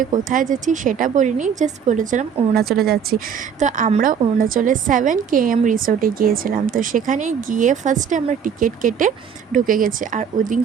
কোথায় যাচ্ছি সেটা বলিনি, জাস্ট বলেছিলাম অরুণাচলে যাচ্ছি। তো আমরা অরুণাচলে 7 km রিসোর্টে গিয়েছিলাম। তো সেখানে গিয়ে ফার্স্টে আমরা টিকিট কেটে ঢুকে গেছি। আর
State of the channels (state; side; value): quieter; left; 7.4 dB